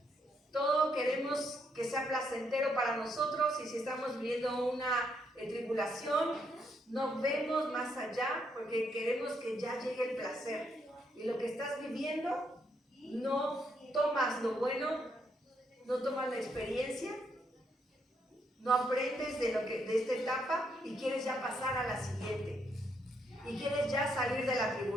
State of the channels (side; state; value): both; normal; correlation 0.76